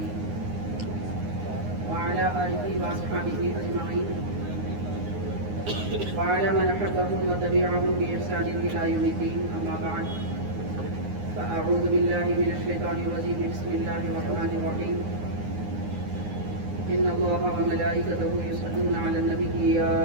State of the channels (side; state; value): left; late; 9.7 ms